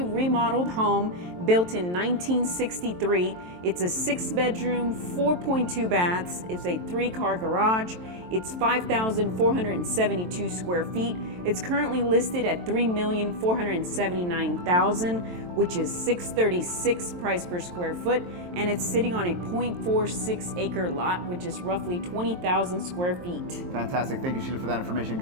remodeled home built in 1963. It's a 6-bedroom, 4.2 baths. It's a 3-car garage. It's 5,472 square feet. It's currently listed at $3,479,000, which is $636 price per square foot, and it's sitting on a 0.46 acre lot, which is roughly 20,000 square feet. Fantastic. Thank you, Sheila, for that information.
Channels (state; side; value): late; left; 23 ms